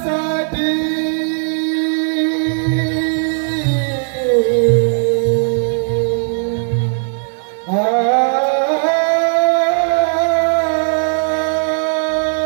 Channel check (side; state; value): left; silent; digital silence